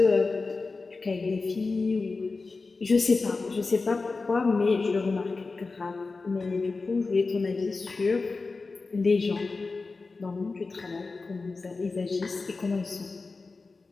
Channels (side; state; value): right; quieter; 3.9 dB